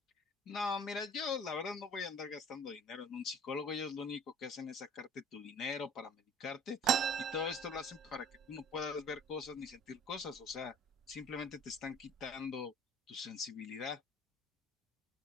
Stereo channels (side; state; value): both; normal; correlation 0.49